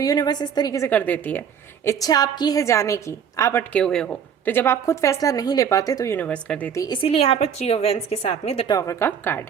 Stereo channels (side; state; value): left; quieter; 7.7 dB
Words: यूनिवर्स इस तरीके से कर देती है, इच्छा आपकी है जाने की, आप अटके हुए हो, तो जब आप खुद फैसला नहीं ले पाते तो यूनिवर्स कर देती है। इसीलिए यहाँ पर 3 ऑफ वेंस के साथ में द टॉवर का कार्ड